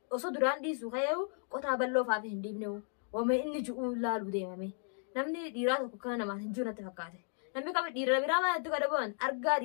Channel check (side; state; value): right; silent; 55 dB below the other